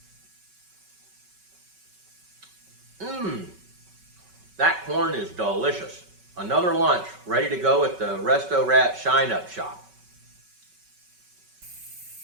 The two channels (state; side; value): late; left; 5.3 ms